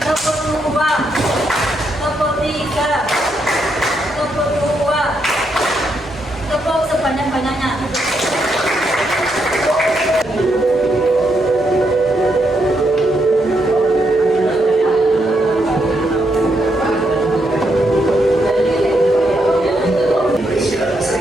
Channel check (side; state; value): both; normal; correlation 0.79